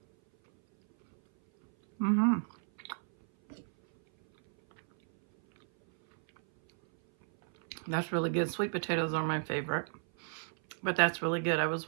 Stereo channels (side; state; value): left; silent; 56 dB below the other